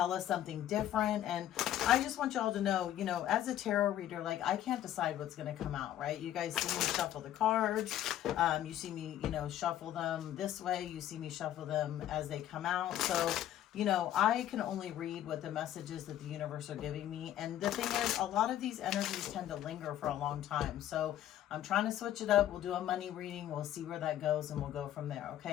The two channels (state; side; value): quieter; right; 12.0 dB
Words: us something different. And I just want y'all to know, you know, as a tarot reader, like I can't decide what's going to come out, right? You guys see me shuffle the cards. You see me, you know, shuffle them this way. You see me shuffle them as they come out. So, you know, I can only read what the messages that the universe are giving me. And the thing is, a lot of these energies tend to linger for a long time. So I'm trying to switch it up. We'll do a money reading. We'll see where that goes and we'll go from there.